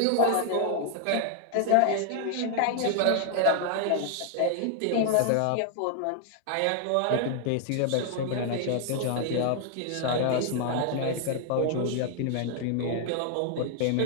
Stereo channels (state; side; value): different; both; correlation 0.00